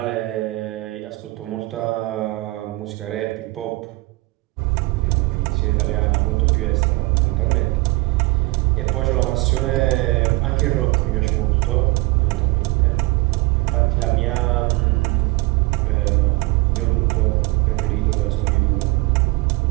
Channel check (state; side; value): quieter; left; 22.2 dB